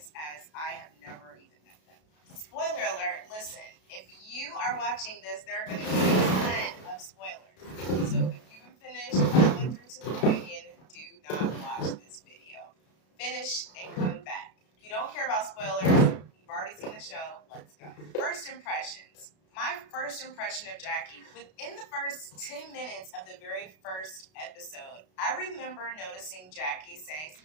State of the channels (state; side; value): late; right; 32 ms